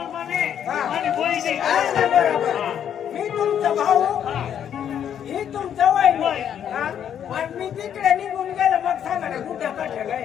म्हणे हा. आणि बहिणी बरोबर मी तुमचा भाऊ हा. ही तुमचा वय वय. हा पण मी तिकडे निघून गेलो मग सांगा ना कुठं कठ्या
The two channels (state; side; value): quieter; right; 9.2 dB